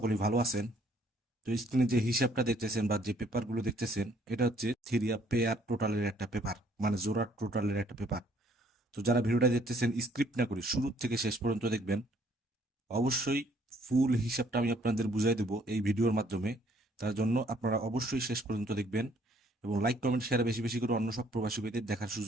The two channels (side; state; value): both; normal; correlation 0.64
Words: ভালো আছেন। তো স্ক্রিনে যে হিসাবটা দেখতেছেন বা যে পেপারগুলো দেখতেছেন, এটা হচ্ছে থিরিয়া পেয়ার টোটালের একটা পেপার, মানে জোড়া টোটালের একটা পেপার। তো যারা ভিডিওটা দেখতেছেন, স্ক্রিপ্ট না করে শুরু থেকে শেষ পর্যন্ত দেখবেন। অবশ্যই ফুল হিসাবটা আমি আপনাদের বুঝাই দেবো এই ভিডিওর মাধ্যমে। তার জন্য আপনারা অবশ্যই শেষ পর্যন্ত দেখবেন এবং লাইক কমেন্ট শেয়ার বেশি বেশি করে অন্য সব প্রবাসী ভাইদের দেখার